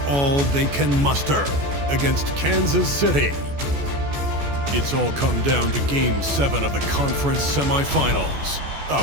they can muster against Kansas City. It's all come down to Game 7 of the conference semifinals.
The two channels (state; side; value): late; left; 14 ms